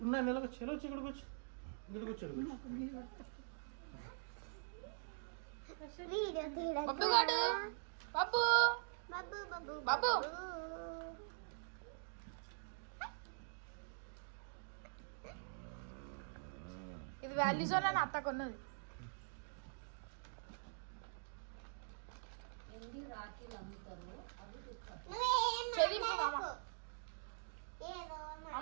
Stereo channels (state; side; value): silent; left; digital silence